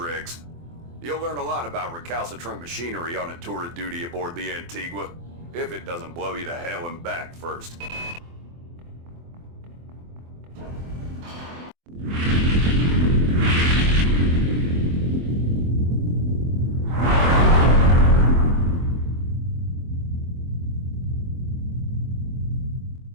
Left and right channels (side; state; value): left; late; 24 ms